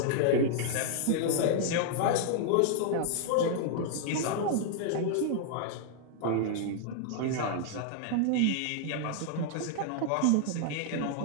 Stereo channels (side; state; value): both; different; correlation -0.01